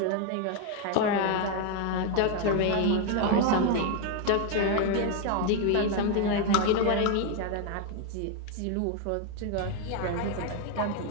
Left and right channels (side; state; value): both; different; correlation 0.01